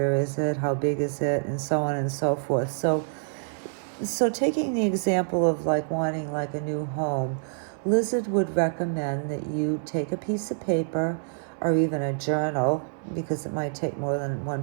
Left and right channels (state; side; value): silent; left; 58 dB below the other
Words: is it? How big is it? And so on and so forth. So taking the example of like wanting like a new home, Lizard would recommend that you take a piece of paper or even a journal, because it might take more than one